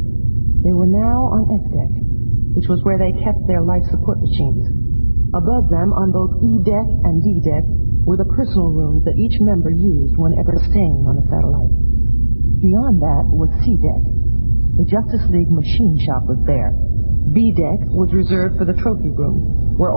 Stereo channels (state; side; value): inverted; both; correlation -1.00